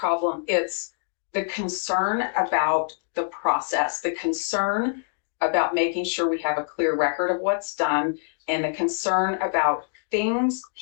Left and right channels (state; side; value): silent; right; digital silence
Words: it's the concern about the process, the concern about making sure we have a clear record of what's done, and the concern about things